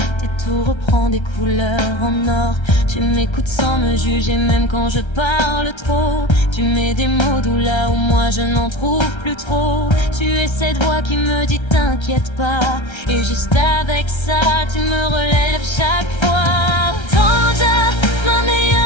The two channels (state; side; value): late; right; 1.3 ms